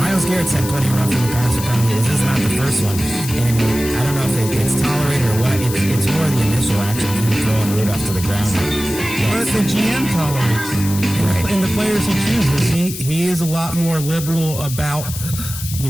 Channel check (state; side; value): noise; left; hiss, 9 dB below the sound